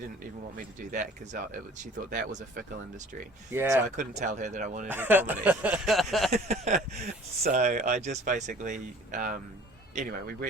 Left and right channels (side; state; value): both; normal; correlation 0.49